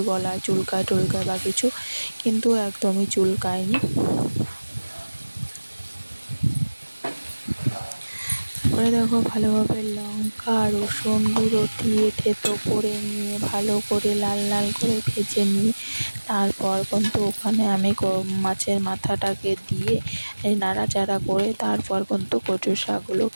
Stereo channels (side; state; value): both; inverted; correlation -1.00